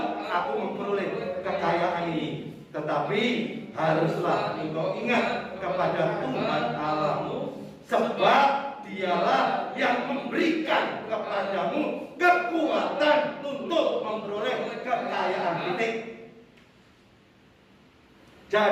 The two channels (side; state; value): both; identical; correlation 1.00